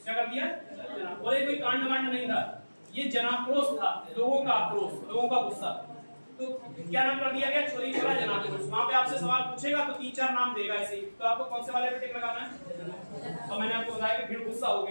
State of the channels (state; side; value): inverted; both; correlation -1.00